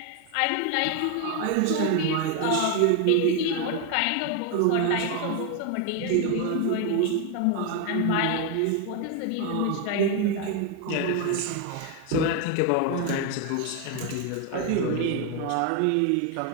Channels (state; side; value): different; both; correlation 0.01